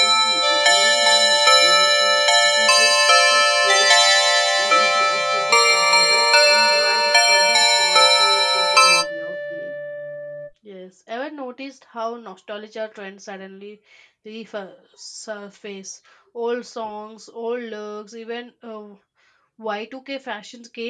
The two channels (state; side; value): identical; both; correlation 1.00